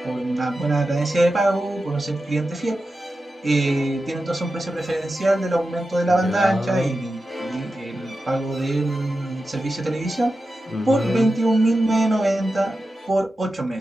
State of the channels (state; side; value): normal; both; correlation 0.91